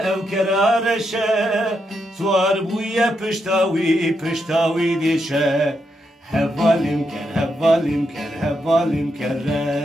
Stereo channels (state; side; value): normal; both; correlation 0.82